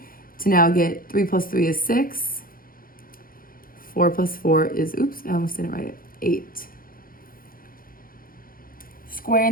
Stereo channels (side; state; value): right; late; 0.42 ms